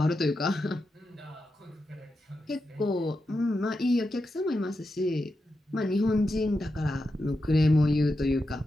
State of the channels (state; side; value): normal; both; correlation 0.88